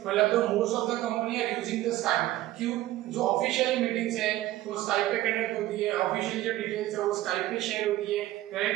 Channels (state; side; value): quieter; left; 15.5 dB